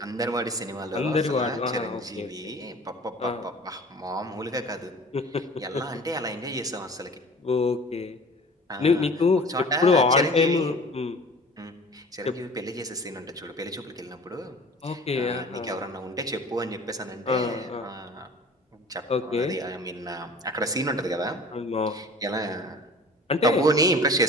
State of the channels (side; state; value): both; normal; correlation 0.44